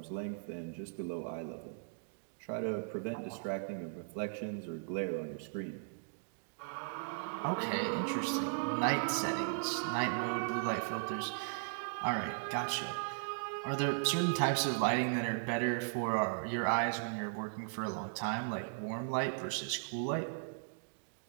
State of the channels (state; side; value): silent; left; digital silence